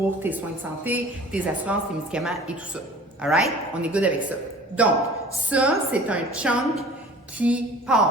tes soins de santé, tes assurances, tes médicaments et tout ça. All right? On est good avec ça. Donc, ça, c'est un chunk qui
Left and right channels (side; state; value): both; normal; correlation 0.45